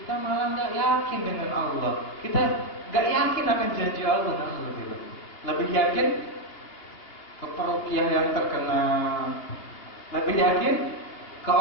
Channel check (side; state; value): right; late; 2.7 ms